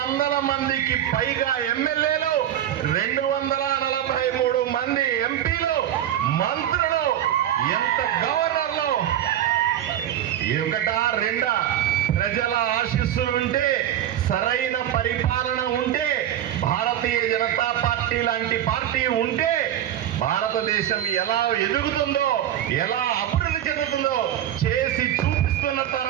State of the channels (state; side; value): quieter; left; 11.3 dB